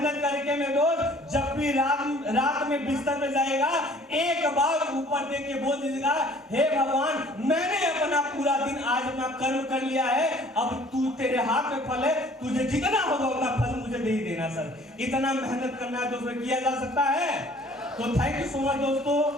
करके में दोस्त जब भी रात में बिस्तर पे जाएगा, एक बार ऊपर देख के बोल दीजिएगा, हे भगवान मैंने अपना पूरा दिन आज अपना कर्म कर लिया है, अब तू तेरे हाथ में फल है, तुझे जितना होगा उतना फल मुझे दे ही देना सर। इतना मेहनत करना है दोस्तों, किया जा सकता है। तो थैंक यू सो मच दोस्तों,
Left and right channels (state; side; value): normal; both; correlation 0.53